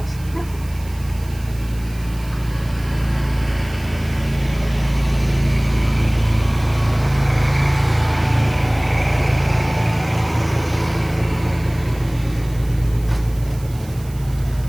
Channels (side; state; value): right; noise; hiss, 21 dB below the sound